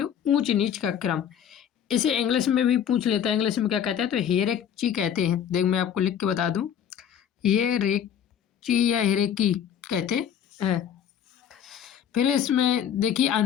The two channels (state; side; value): quieter; right; 8.9 dB